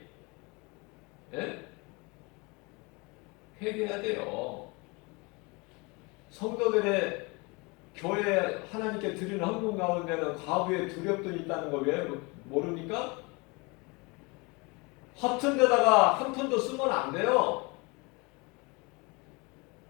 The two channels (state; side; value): quieter; right; 27.5 dB